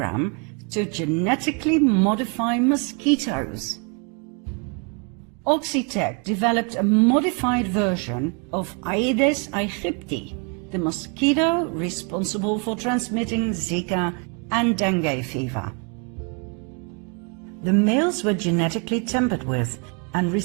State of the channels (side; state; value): left; quieter; 35.4 dB